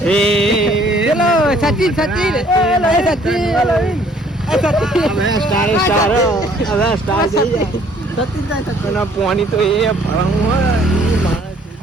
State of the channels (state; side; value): normal; both; correlation 0.60